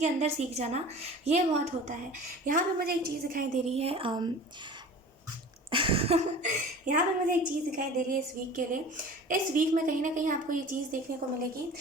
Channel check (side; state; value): both; normal; correlation 0.40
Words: अंदर सीख जाना, ये बहुत होता है। यहाँ पे मुझे एक चीज़ दिखाई दे रही है यहाँ पे मुझे एक चीज़ दिखाई दे रही है इस वीक के लिए। इस वीक में कहीं ना कहीं आपको ये चीज़ देखने को मिलेगी